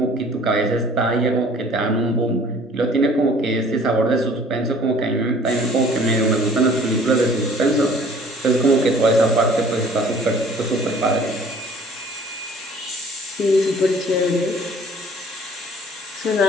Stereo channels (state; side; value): normal; both; correlation 0.52